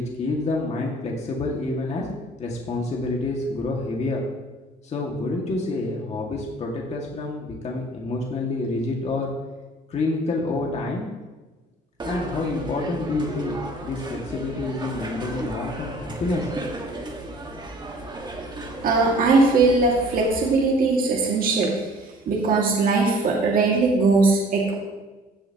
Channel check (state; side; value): normal; both; correlation 0.51